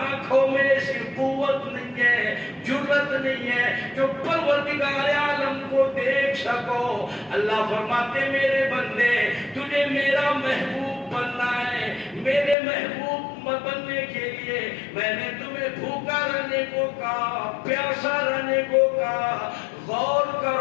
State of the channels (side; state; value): right; drops out; at 12.6 s